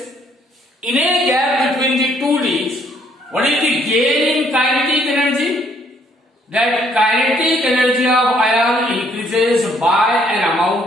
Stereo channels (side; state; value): both; normal; correlation 0.66